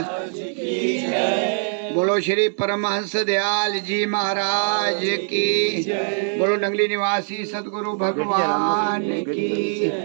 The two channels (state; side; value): silent; left; digital silence